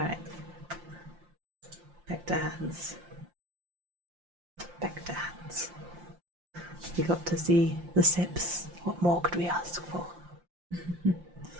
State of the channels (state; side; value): late; left; 5.7 ms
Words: Back to hands. Back to hands. We got to see the sips. What more could we ask for?